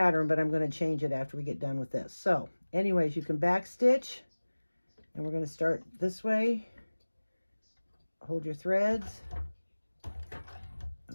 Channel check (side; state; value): both; inverted; correlation -1.00